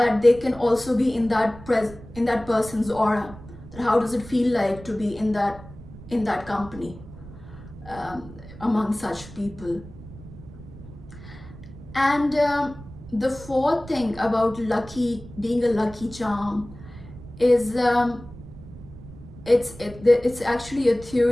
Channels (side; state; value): right; noise; rumble, 16 dB below the sound